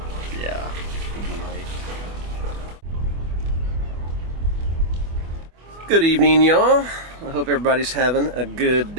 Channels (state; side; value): late; left; 24 ms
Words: Yeah. Good evening, y'all. I hope everybody's having a good